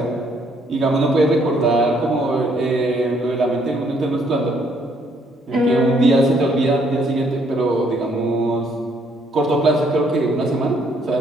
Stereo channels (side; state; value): both; normal; correlation 0.68